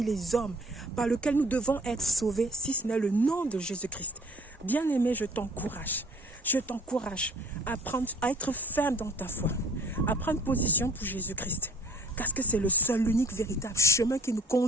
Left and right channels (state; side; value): normal; both; correlation 0.54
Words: les hommes par lequel nous devons être sauvés, si ce n'est le nom de Jésus-Christ. Bien-aimé, je t'encourage à être ferme dans ta foi, à prendre position pour Jésus-Christ. Parce que c'est le seul, l'unique véritable chemin qui nous